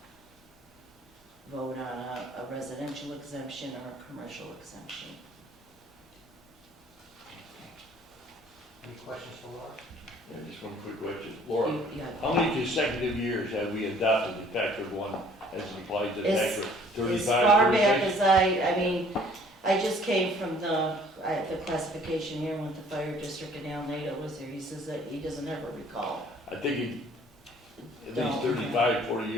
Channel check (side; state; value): both; normal; correlation 0.56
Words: vote on a residential exemption or a commercial exemption. Any questions for Laura? Yeah, just one quick question. Laura, Yeah. how many consecutive years have we adopted the factor of 1 as it applies to the tax rate? 35, As far back 36? as I mean, I just came from the classification here with the fire district, and Al Nato was there. He says that he doesn't ever recall. I think at least No. 35, 40